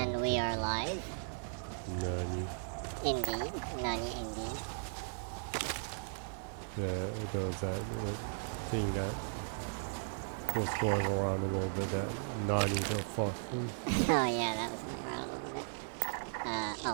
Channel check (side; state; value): left; silent; digital silence